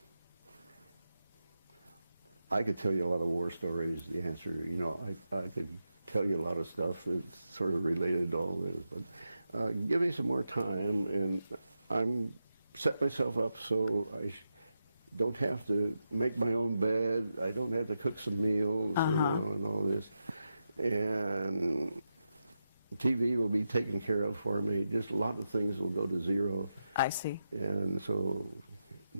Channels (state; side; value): inverted; both; correlation -0.88